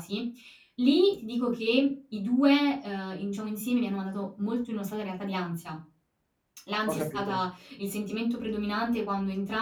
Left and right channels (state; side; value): identical; both; correlation 1.00